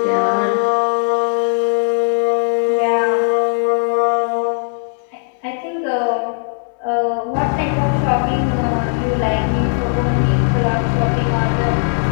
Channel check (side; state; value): right; silent; 68 dB below the other